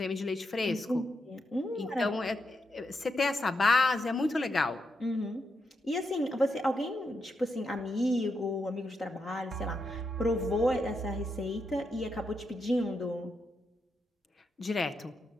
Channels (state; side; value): normal; both; correlation 0.83